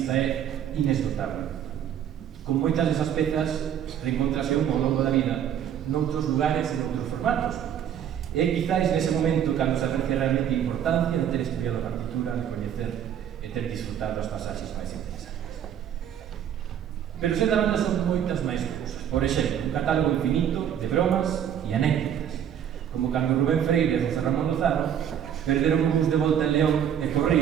é inesgotable. Con moitas desas pezas reencontrase un ao longo da vida noutros lugares e noutros formatos. E quizáis nese momento cando se aprecia realmente a importancia de ter estudiado a partitura, de coñecer e ter disfrutado as pasaxes máis interesantes. Pero ser da banda son moitas máis cousas. Por exemplo, un catálogo infinito de bromas e anécdotas, como cando Rubén Freire e José Ramón Lozano perderon un bus de volta en León e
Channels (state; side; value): quieter; left; 9.5 dB